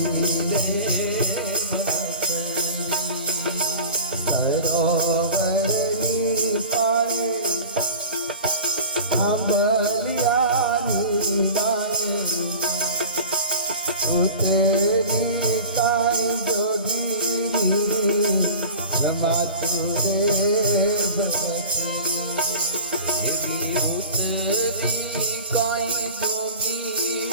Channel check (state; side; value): inverted; both; correlation -0.37